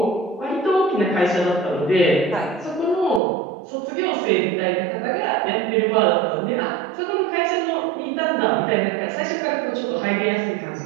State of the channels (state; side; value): drops out; left; at 3.2 s